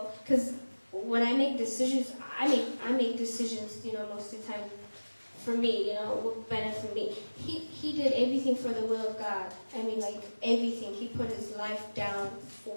when I make decisions, I make decisions, most of the time for me, what benefit me. He did everything for the will of God. Everything. He put his life down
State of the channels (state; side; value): inverted; both; correlation -1.00